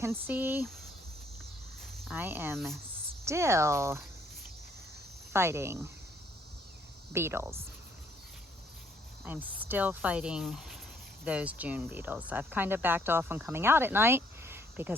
see I am still fighting beetles. I'm still fighting those June beetles. I've kind of backed off on coming out at night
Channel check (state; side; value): normal; both; correlation 0.67